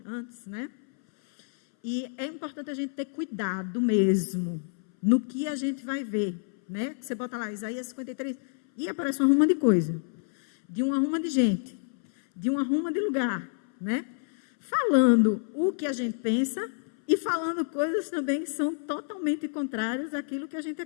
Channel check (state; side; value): silent; right; 59 dB below the other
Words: antes, né? E é importante a gente ter cuidado mesmo no que a gente vai ver, né? Você bota lá Isaías 53 e aparece uma ruma de coisa, de uma ruma de gente, de uma ruma de lugar, né? Falando o que a gente pensa e falando coisas também que são totalmente contrárias àquilo que a gente